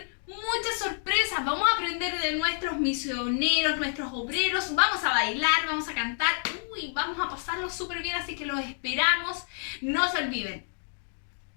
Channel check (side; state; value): right; silent; digital silence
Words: muchas sorpresas, vamos a aprender de nuestros misioneros, nuestros obreros, vamos a bailar, vamos a cantar, vamos a pasarlo súper bien, así que los esperamos. No se olviden.